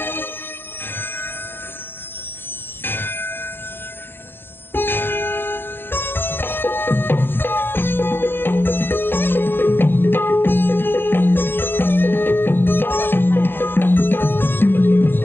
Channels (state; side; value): late; right; 0.10 ms